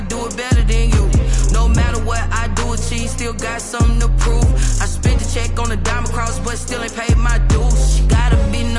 do it better than you. No matter what I do, achieve, still got something to prove. I spent the check on the diamond cross, but still ain't paid my dues. Gotta be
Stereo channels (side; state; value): both; identical; correlation 1.00